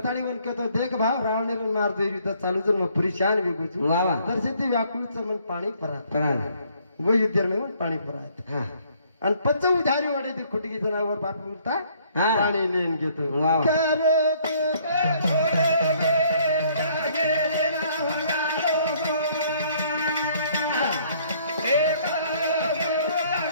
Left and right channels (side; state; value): both; inverted; correlation -0.63